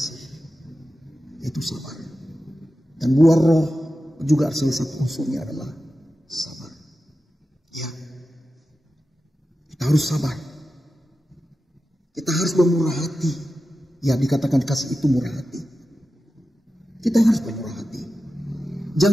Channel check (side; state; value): both; normal; correlation 0.92